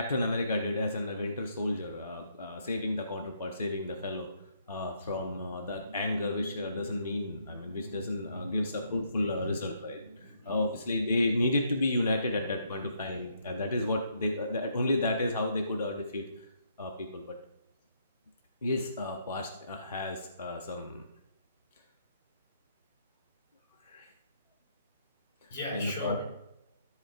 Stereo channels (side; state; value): both; inverted; correlation -0.72